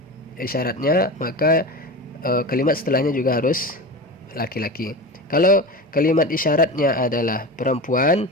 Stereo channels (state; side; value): normal; both; correlation 0.28